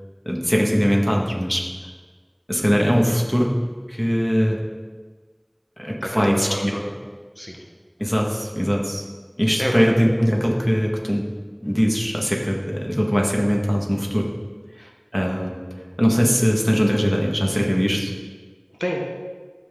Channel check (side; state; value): both; identical; correlation 1.00